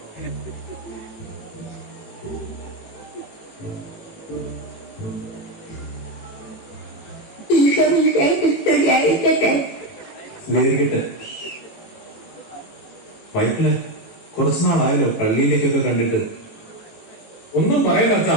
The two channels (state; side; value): late; right; 18 ms